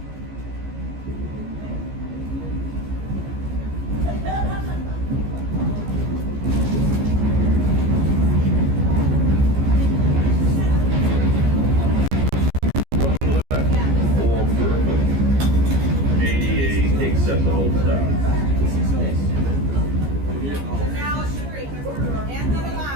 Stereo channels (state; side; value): late; left; 15 ms